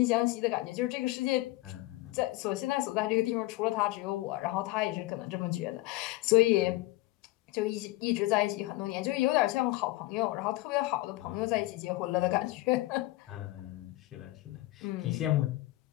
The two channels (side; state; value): right; quieter; 19.0 dB